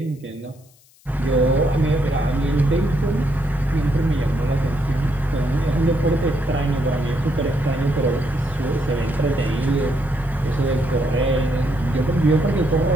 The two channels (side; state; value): left; noise; hiss, 30 dB below the sound